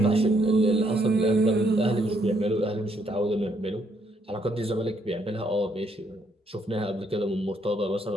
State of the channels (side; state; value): both; normal; correlation 0.72